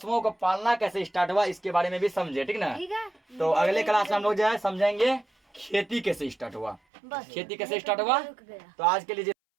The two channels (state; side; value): drops out; left; at 6.8 s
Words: को पालना कैसे स्टार्ट हुआ इसके बारे में भी समझे, ठीक ना। तो अगले क्लास में हम लोग जो है समझेंगे खेती कैसे स्टार्ट हुआ, खेती कैसे स्टार्ट हुआ। तो आज के लिए